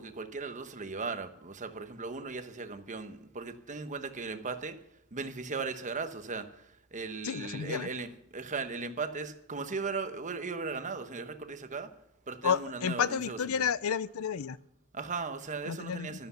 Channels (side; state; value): both; normal; correlation -0.11